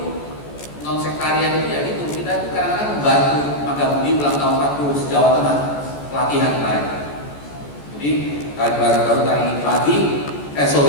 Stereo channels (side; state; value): right; late; 14 ms